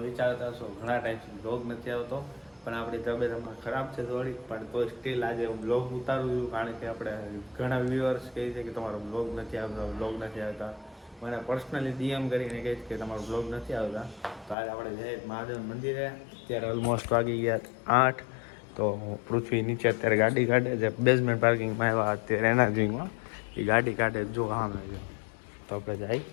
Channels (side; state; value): right; drops out; at 14.6 s